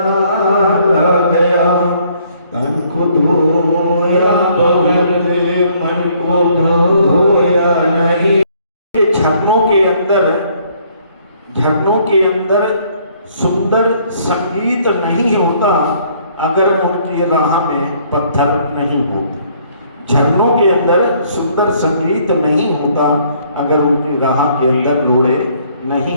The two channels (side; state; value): both; inverted; correlation -0.64